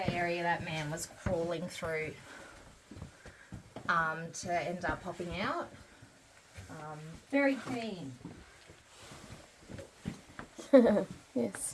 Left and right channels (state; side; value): identical; both; correlation 1.00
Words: area that man was crawling through to end up popping out. Very clean.